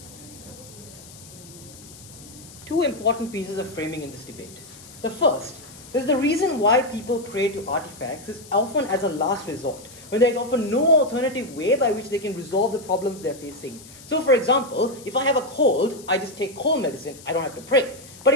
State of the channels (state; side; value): noise; left; hiss, 19 dB below the sound